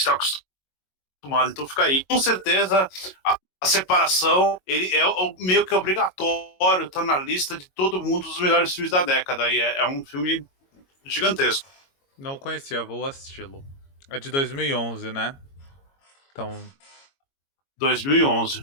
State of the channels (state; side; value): late; right; 22 ms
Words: acostumado. Então fica aí. Com certeza, a separação ele é meio que obrigatório, tá na lista de todo mundo dos melhores filmes da década. E é um filme gigantesco. Não conhecia, vou assisti-lo. É de 2011, né? Então, 2011.